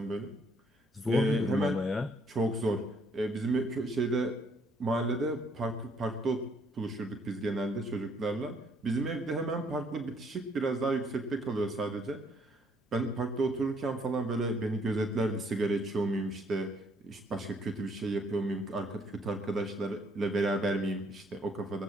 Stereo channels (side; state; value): both; normal; correlation 0.66